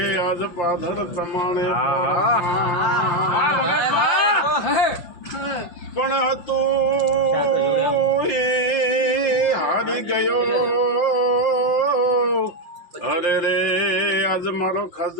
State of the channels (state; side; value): late; right; 5.7 ms